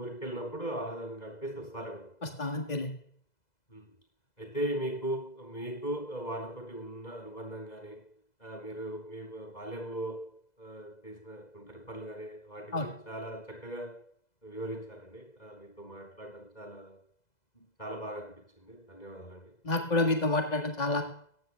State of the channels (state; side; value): late; right; 2.0 ms